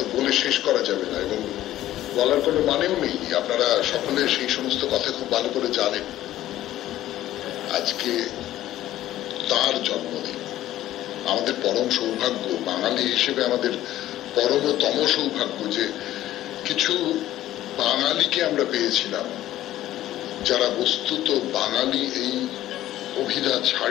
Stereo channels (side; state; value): right; quieter; 13.8 dB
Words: বলে শেষ করা যাবে না এবং বলার কোনো মানেও নেই। আপনারা সকলে সেই সমস্ত কথা খুব ভালো করে জানেন। আজকে তার জন্মদিন। আমাদের পরম সৌভাগ্য, বাঙালি হিসেবে আমাদের পরমতম সৌভাগ্য যে কিছু বাঙালিকে আমরা পেয়েছিলাম যারা বস্তুত বাঙালি এই অভিধা